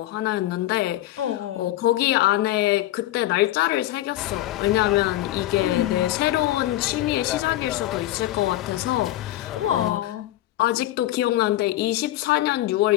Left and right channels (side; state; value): right; quieter; 14.9 dB